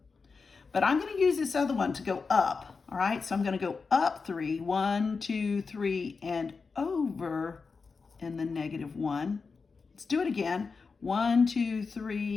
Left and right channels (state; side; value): quieter; right; 4.7 dB